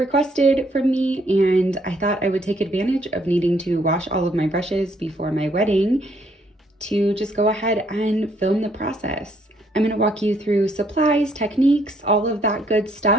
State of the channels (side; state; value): both; normal; correlation 0.69